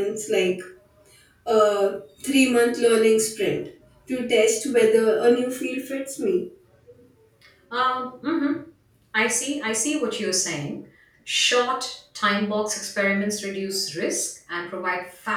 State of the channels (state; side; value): identical; both; correlation 1.00